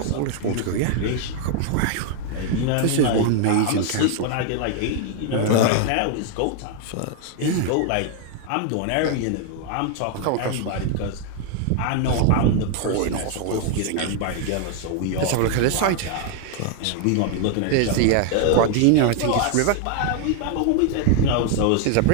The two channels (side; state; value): both; different; correlation 0.00